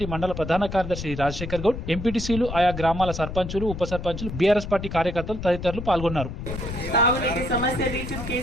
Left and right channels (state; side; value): noise; left; rumble, 7 dB below the sound